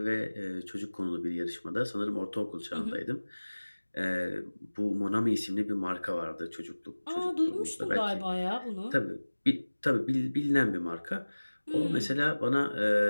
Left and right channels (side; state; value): both; inverted; correlation -1.00